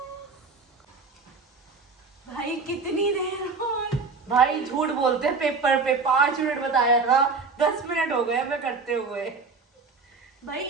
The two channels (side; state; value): left; quieter; 4.4 dB